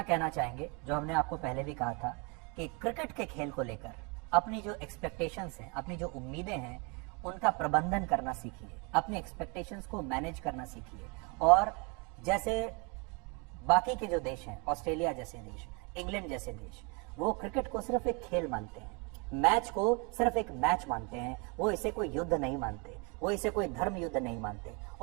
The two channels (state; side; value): quieter; left; 31.9 dB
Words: कहना चाहेंगे, जो हमने आपको पहले भी कहा था, कि क्रिकेट के खेल को लेकर अपनी जो एक्सपेक्टेशंस हैं, अपनी जो उम्मीदें हैं, उनका प्रबंधन करना सीखिए, अपनी एक्सपेक्टेशंस को मैनेज करना सीखिए। और जैसे बाकी के जो देश हैं, ऑस्ट्रेलिया जैसे देश, इंग्लैंड जैसे देश, वो क्रिकेट को सिर्फ एक खेल मानते हैं, मैच को सिर्फ एक मैच मानते हैं, वो इसे कोई युद्ध नहीं मानते, वो इसे कोई धर्म युद्ध नहीं मानते।